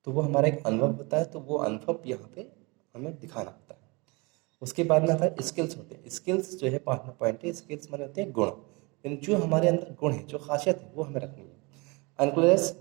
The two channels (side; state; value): left; quieter; 27.4 dB